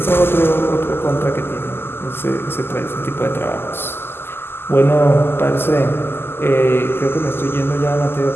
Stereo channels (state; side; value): late; right; 0.11 ms